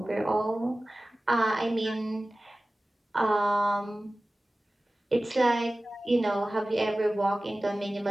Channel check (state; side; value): normal; both; correlation 0.97